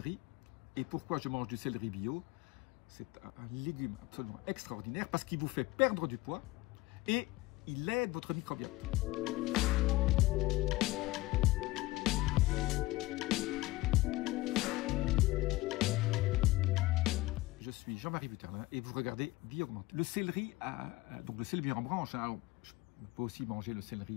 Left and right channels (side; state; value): right; quieter; 19.3 dB